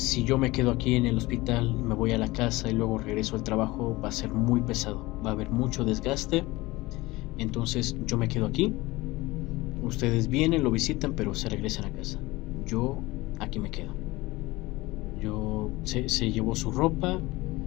yo me quedo aquí en el hospital y me voy a la casa y luego regreso al trabajo, va a ser muy pesado, va a haber mucho desgaste, entonces yo me quedo aquí, ustedes vienen, lo visitan, pero se regresan a casa, yo aquí me quedo. Se llevó su ropa,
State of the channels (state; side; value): quieter; right; 20.6 dB